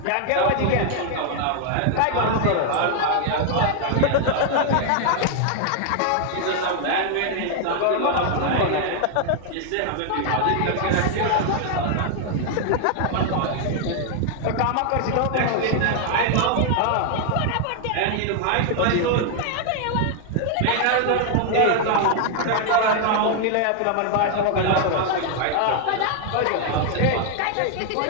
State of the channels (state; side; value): different; both; correlation 0.00